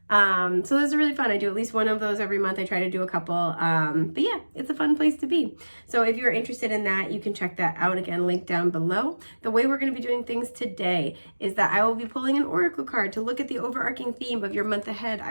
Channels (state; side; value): inverted; both; correlation -1.00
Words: So those are really fun. I do at least one of those every month. I try to do a couple. But yeah, it's a fun place to be. So if you're interested in that, you can check that out. Again, link down below. The way we're going to be doing things today is that I will be pulling an oracle card to look at the overarching theme of your month ahead.